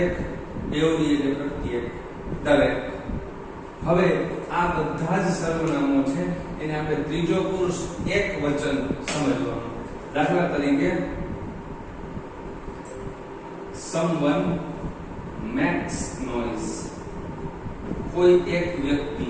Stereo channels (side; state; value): both; identical; correlation 1.00